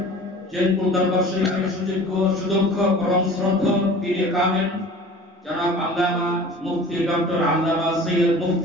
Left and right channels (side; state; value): both; normal; correlation 0.42